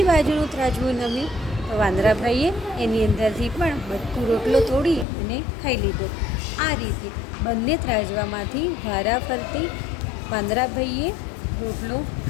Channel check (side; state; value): right; drops out; at 5.1 s